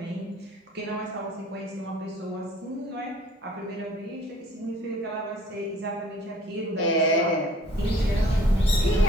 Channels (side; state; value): both; normal; correlation 0.54